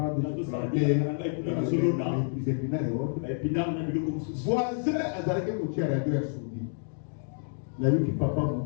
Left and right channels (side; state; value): right; silent; digital silence